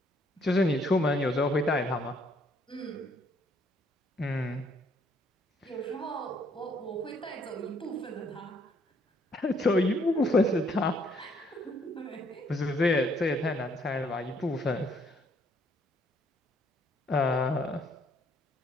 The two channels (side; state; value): both; normal; correlation 0.68